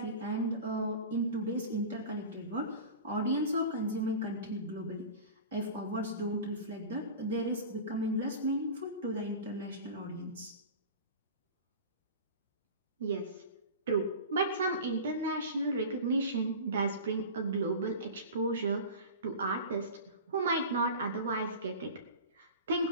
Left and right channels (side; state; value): both; inverted; correlation -0.33